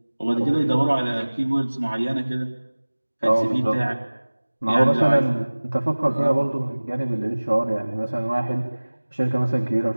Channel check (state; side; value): inverted; both; correlation -1.00